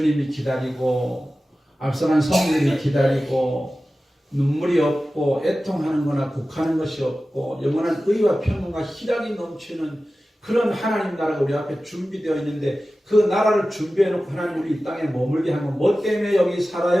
기다리고 앞서간 성도들이 기다리고 눈물이 없고 애통하는 거나 곡하는 것이 없고 영원한 의와 평강과 희락이 넘치는 그런 하나님 나라가 우리 앞에 준비되어 있는데 그 나라를 준비해 놓고 하나님 우리 이 땅에 머물게 하면 뭐 때문에 여기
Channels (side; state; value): both; normal; correlation 0.95